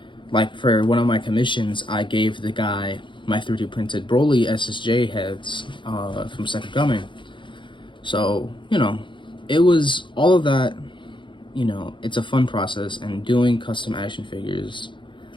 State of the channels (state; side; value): late; right; 0.23 ms